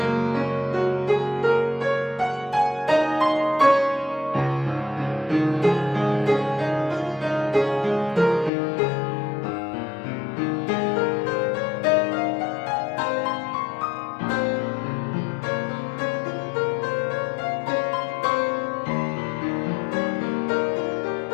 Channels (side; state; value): right; drops out; at 8.5 s